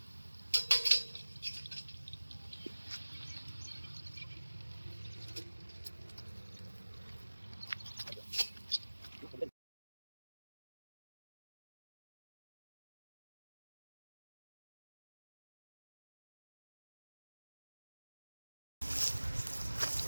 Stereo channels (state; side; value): inverted; both; correlation -1.00